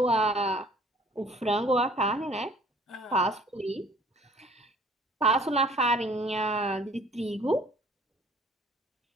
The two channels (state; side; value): normal; both; correlation 0.54